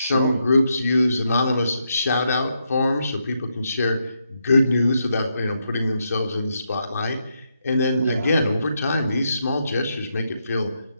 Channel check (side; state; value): both; inverted; correlation -0.81